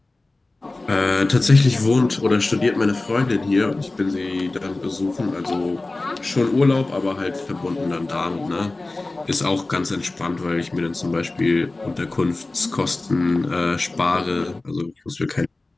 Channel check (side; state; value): right; quieter; 3.1 dB